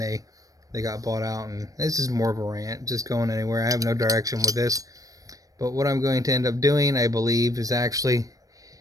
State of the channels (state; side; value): late; left; 0.17 ms